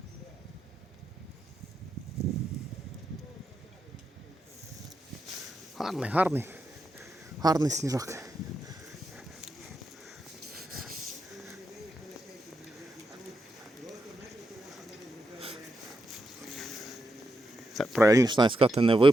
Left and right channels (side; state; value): both; normal; correlation 0.85